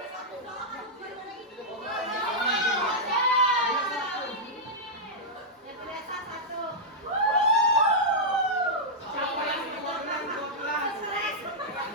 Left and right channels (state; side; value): normal; both; correlation -0.08